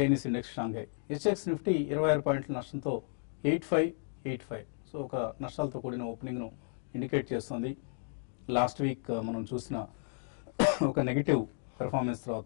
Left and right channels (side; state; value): right; silent; 56 dB below the other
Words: index Shanghai. హెచ్ఎక్స్ నిఫ్టీ 26 పాయింట్ల నష్టంతో 8585. సో ఒక నష్టాలతో కూడిన ఓపెనింగ్ ను ఇండికేట్ చేస్తుంది. లాస్ట్ వీక్ మనం చూసిన ఒక నెగిటివ్ పెర్ఫార్మెన్స్